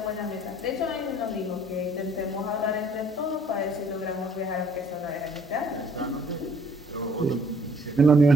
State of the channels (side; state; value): both; normal; correlation 0.59